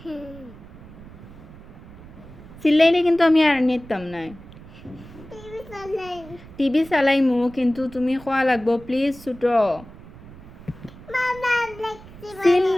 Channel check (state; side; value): noise; right; rumble, 18 dB below the sound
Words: সিলাইলে কিন্তু আমি আর নিতাম না টিভি চালাইমু কিন্তু তুমি খোয়া লাগবো প্লিজ ছুটো